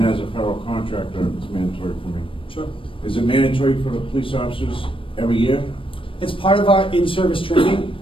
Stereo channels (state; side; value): late; right; 0.25 ms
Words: as a federal contractor, it's mandatory for me. Sure. Is it mandatory for the police officers every year? It's part of our in-service training.